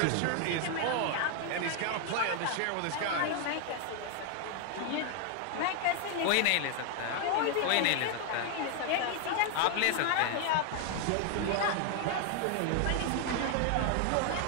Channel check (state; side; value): different; both; correlation 0.00